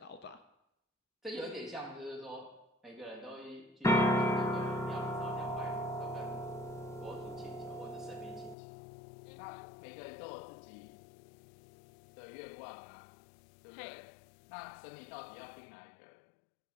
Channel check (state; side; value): drops out; right; at 8.6 s